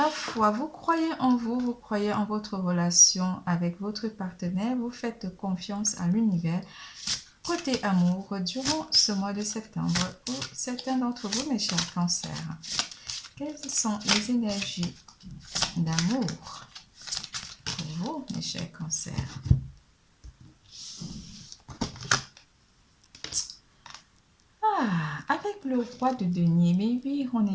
foi, vous croyez en vous, vous croyez en votre relation avec votre partenaire, vous faites confiance à l'univers. Côté amour, durant ce mois de septembre, pour certains d'entre vous, mes chers cancers, quelles sont les énergies d'amour pour vous, mes chers cancers? Avec le roi de denier, mais oui, on est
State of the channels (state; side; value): identical; both; correlation 1.00